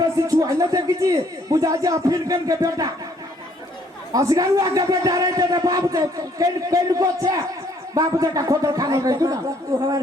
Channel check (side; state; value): both; normal; correlation 0.64